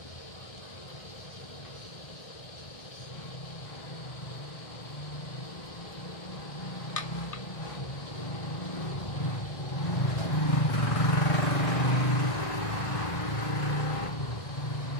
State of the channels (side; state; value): right; late; 1.6 ms